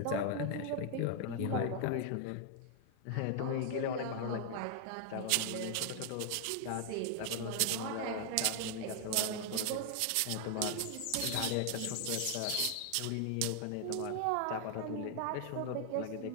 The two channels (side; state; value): both; different; correlation 0.00